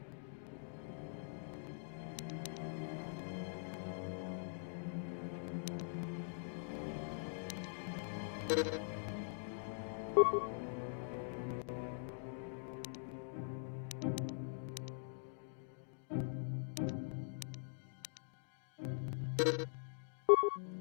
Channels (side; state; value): right; silent; digital silence